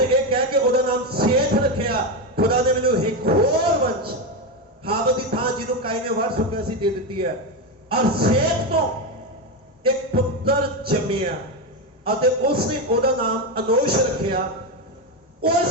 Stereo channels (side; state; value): both; normal; correlation 0.11